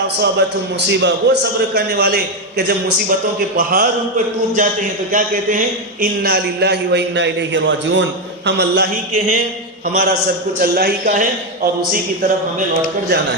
اصابتهم مصیبہ، وہ صبر کرنے والے کہ جب مصیبتوں کے پہاڑ ان پر ٹوٹ جاتے ہیں تو کیا کہتے ہیں؟ انا للہ و انا الیہ راجعون، ہم اللہ ہی کے ہیں، ہمارا سب کچھ اللہ ہی کا ہے اور اسی کی طرف ہمیں لوٹ کر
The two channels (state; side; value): normal; both; correlation 0.08